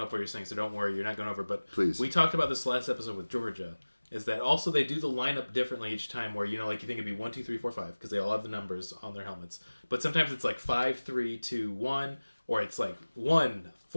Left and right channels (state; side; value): inverted; both; correlation -1.00